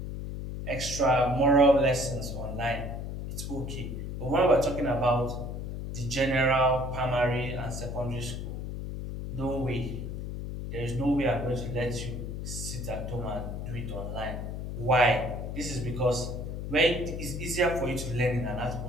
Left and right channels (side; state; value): left; noise; hum, 6 dB below the sound